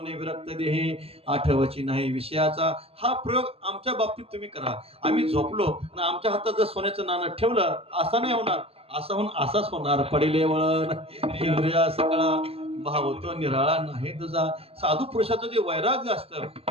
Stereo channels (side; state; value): left; late; 0.28 ms